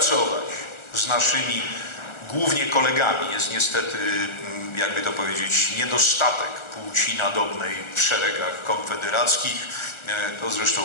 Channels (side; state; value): right; late; 1.4 ms